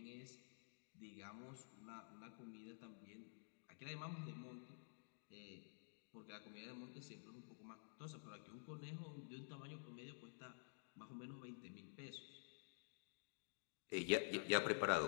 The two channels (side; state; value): right; silent; digital silence